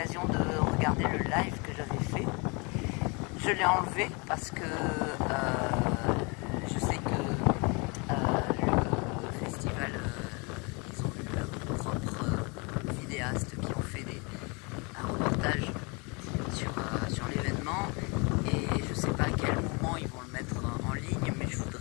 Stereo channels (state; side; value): quieter; right; 30.4 dB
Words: de regarder le live que j'avais fait. Je l'ai enlevé parce que je sais que le festival, ils ont eu leurs propres vidéastes qui ont fait un reportage sur l'événement, et je ne sais pas à quel moment ils vont le mettre en ligne, mais je